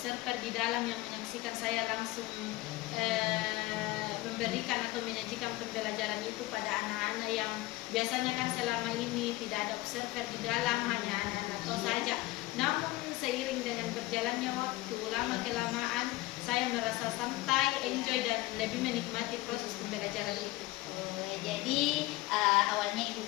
di dalam yang menyaksikan saya langsung memberikan atau menyajikan pembelajaran itu pada anak-anak yang biasanya kan selama ini tidak ada observer di dalam, hanya anak-anak tos saja. Namun seiring dengan berjalannya waktu, lama-kelamaan saya merasa santai, enjoy dan lebih menikmati proses pembelajaran itu. Jadi awalnya Ibu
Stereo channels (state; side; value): quieter; right; 19.2 dB